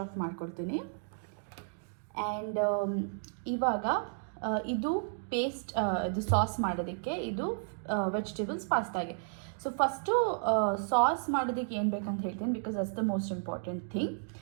ಆಫ್ ಮಾಡ್ಕೊಡ್ತೀನಿ. ಆ್ಯಂಡ್ ಇವಾಗ ಇದು ಪೇಸ್ಟ್, ಇದು ಸಾಸ್ ಮಾಡೋದಕ್ಕೆ, ಇದು ವೆಜಿಟೇಬಲ್ಸ್ ಪಾಸ್ತಾಗೆ. ಸೊ ಫಸ್ಟು ಸಾಸ್ ಮಾಡೋದಕ್ಕೆ ಏನು ಬೇಕಂತ ಹೇಳ್ತೀನಿ, because that's the most important thing.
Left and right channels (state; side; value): silent; left; digital silence